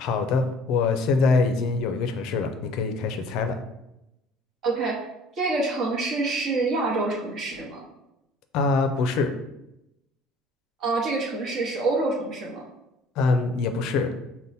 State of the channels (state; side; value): normal; both; correlation 0.52